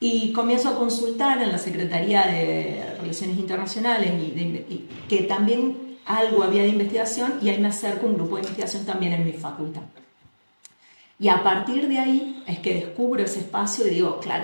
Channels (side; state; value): both; inverted; correlation -1.00